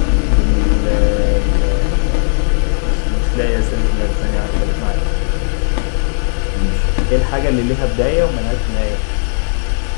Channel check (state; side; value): silent; right; digital silence